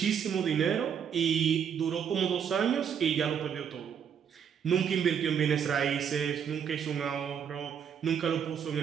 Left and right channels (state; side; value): quieter; left; 7.8 dB